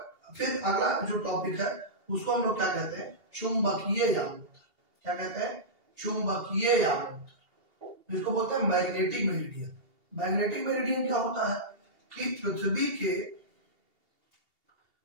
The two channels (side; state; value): left; late; 2.8 ms